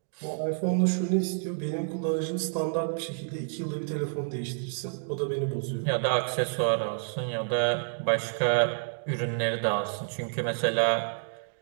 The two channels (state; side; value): silent; left; digital silence